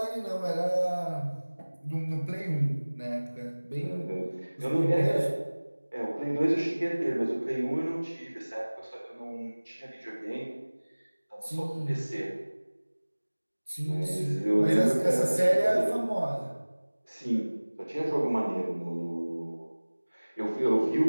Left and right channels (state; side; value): inverted; both; correlation -1.00